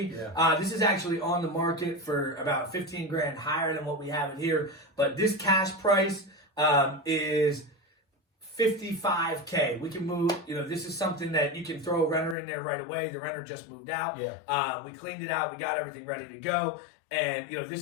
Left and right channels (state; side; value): drops out; right; at 12.4 s